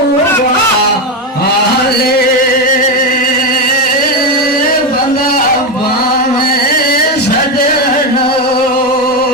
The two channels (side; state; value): both; normal; correlation 0.11